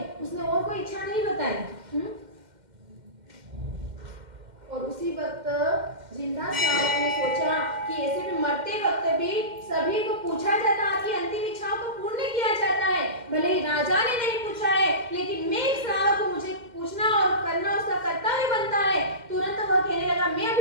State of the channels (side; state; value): left; late; 2.1 ms